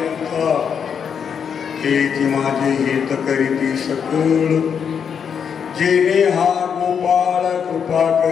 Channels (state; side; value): quieter; right; 7.2 dB